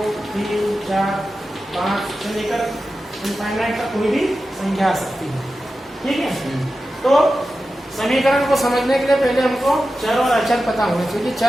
3, 4, 5 से लेकर इनफाइनाइट तक कोई भी संख्या आ सकती है। ठीक है, तो समीकरण को समझने के लिए पहले हमको चर और अचर पता होना चाहिए।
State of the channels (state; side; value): normal; both; correlation 0.92